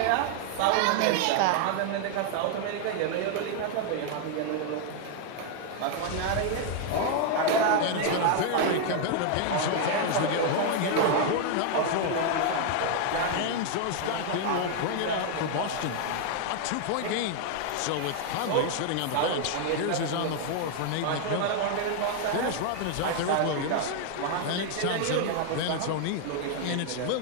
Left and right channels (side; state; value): both; different; correlation 0.00